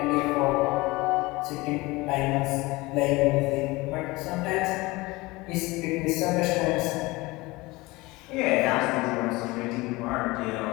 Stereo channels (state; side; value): quieter; right; 22.0 dB